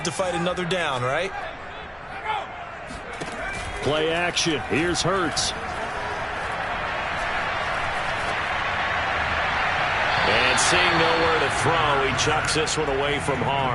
to fight another down, right? Play action. Here's Hurts. And seeing nowhere to throw, he chucks this one away from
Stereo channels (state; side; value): identical; both; correlation 1.00